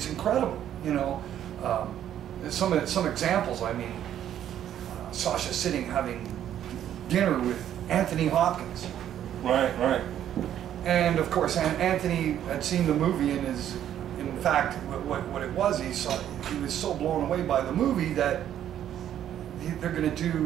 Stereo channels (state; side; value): quieter; left; 10.7 dB